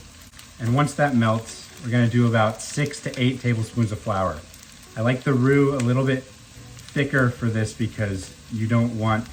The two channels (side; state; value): both; identical; correlation 1.00